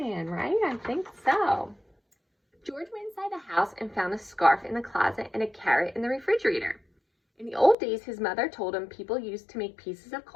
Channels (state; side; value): drops out; right; at 7.8 s